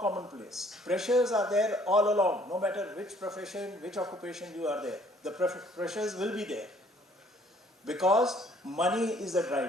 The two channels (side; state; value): both; normal; correlation 0.60